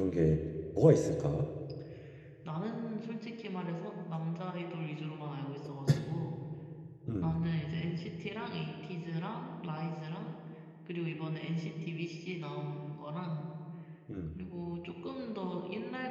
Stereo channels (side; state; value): both; identical; correlation 1.00